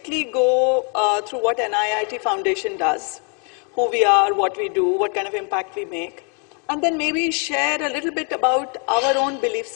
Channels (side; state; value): right; quieter; 38.7 dB